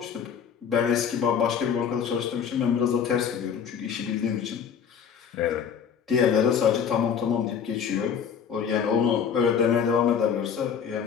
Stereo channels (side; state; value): right; quieter; 7.4 dB